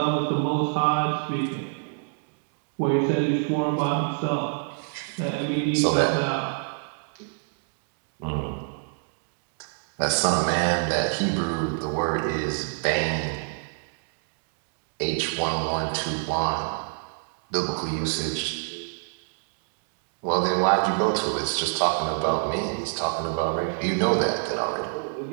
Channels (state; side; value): silent; left; digital silence